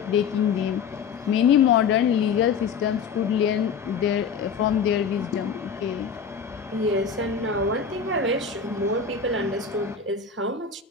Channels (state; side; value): quieter; right; 6.1 dB